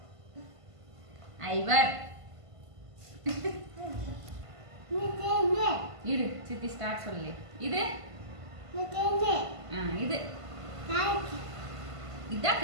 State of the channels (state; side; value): late; left; 1.5 ms